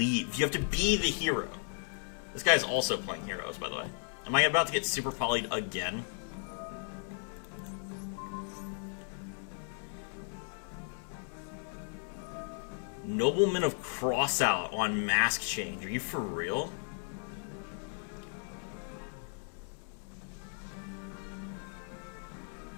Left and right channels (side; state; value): right; silent; 54 dB below the other